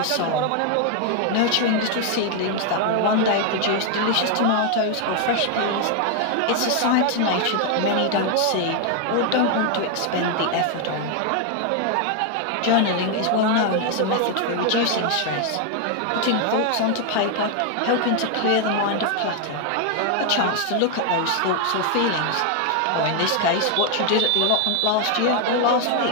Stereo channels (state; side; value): different; both; correlation 0.00